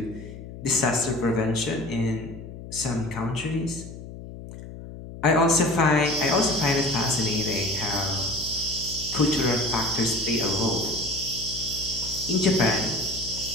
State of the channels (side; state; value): left; noise; hum, 13 dB below the sound